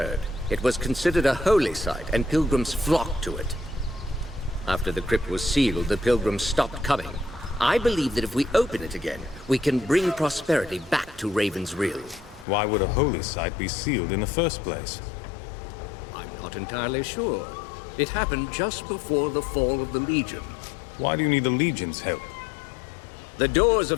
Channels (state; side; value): drops out; right; at 12.5 s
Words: It was considered a holy site, and pilgrims flocked to it. After the crypt was sealed, the pilgrims stopped coming. I believe that if we open it again, we can bring prosperity back to Raven's Riel. Why would a holy site be sealed in the first place? I'm not entirely sure. It happened just before the fall of the Legion. Why do you need the Legion's help? The doors of